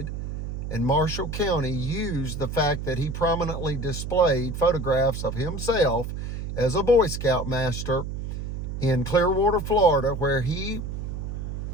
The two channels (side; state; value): right; noise; hum, 5 dB below the sound